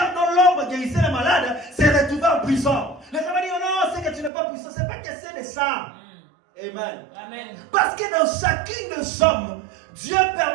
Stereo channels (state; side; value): drops out; left; at 4.3 s